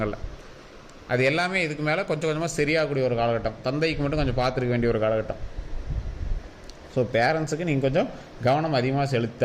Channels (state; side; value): identical; both; correlation 1.00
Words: அது எல்லாமே இதுக்கு மேலே கொஞ்சம் கொஞ்சமாக சரியாகக்கூடிய ஒரு காலகட்டம். தந்தைக்கு மட்டும் கொஞ்சம் பார்த்துருக்க வேண்டிய ஒரு காலகட்டம். ஸோ பேரண்ட்ஸுக்கு நீங்கள் கொஞ்சம் கவனம் அதிகமாக செலுத்தி